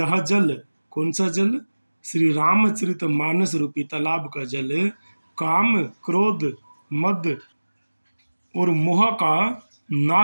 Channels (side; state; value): both; inverted; correlation -1.00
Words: जल, कौन सा जल? श्री रामचरित मानस रूपी तालाब का जल काम, क्रोध, मद और मोह का